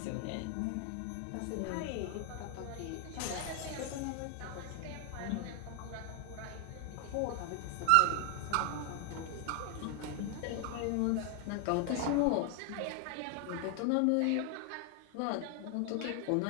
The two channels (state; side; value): different; both; correlation 0.00